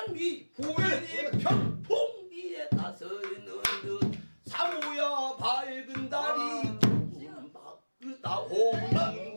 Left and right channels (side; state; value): both; inverted; correlation -1.00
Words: 부인이 평풍비에 나서는 듯 사모야 밝은 달이 바꾸다 오는